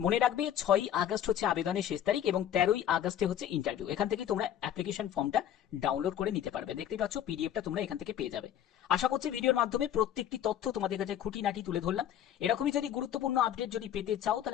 রাখবে 6ই আগস্ট হচ্ছে আবেদনের শেষ তারিখ এবং 13ই আগস্টে হচ্ছে ইন্টারভিউ। এখান থেকে তোমরা অ্যাপ্লিকেশন ফর্মটা ডাউনলোড করে নিতে পারবে। দেখতে পাচ্ছ পিডিএফটা তোমরা এখান থেকে পেয়ে যাবে। আশা করছি ভিডিওর মাধ্যমে প্রত্যেকটি তথ্য তোমাদের কাছে খুঁটিনাটি তুলে ধরলাম। এরকমই যদি গুরুত্বপূর্ণ আপডেট যদি পেতে চাও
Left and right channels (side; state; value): right; quieter; 10.6 dB